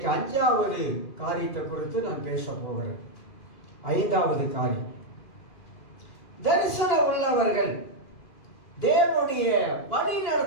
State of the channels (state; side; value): late; right; 2.8 ms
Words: 5வது காரியத்தை குறித்து நான் பேச போகிறேன். 5வது காரியம், தரிசனம் உள்ளவர்கள் தேவனுடைய வழி